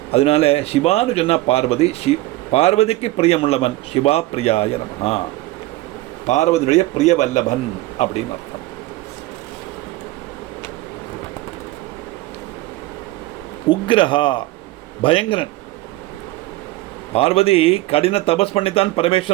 அதனால சிவான்னு சொன்னால் பார்வதி, பார்வதிக்கு பிரியமுள்ளவன், சிவா பிரியாய நமஹா, பார்வதியுடைய பிரிய வல்லபன் அப்படின்னு அர்த்தம். உக்ரஹா பயங்கரன். பார்வதி கடின தபஸ் பண்ணித்தான்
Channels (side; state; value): left; quieter; 18.0 dB